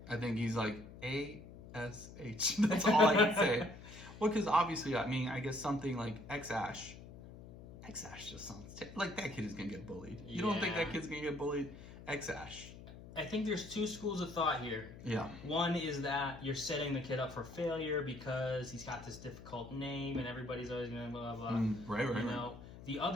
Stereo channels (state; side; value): noise; left; hum, 15 dB below the sound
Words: I think he's like A-S-H. That's all I can say. Well, because obviously, I mean, I guess something like X-Ash. X-Ash just sounds... like, that kid is going to get bullied. You don't think that kid's going to get bullied? X-Ash. I think there's 2 schools of thought here. Yeah. One is that you're setting the kid up for failure because he's got this difficult name and everybody's always going to blah, blah, blah. Right. The